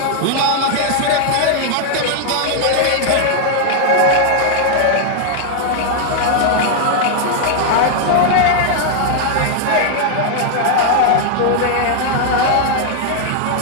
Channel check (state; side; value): different; both; correlation 0.00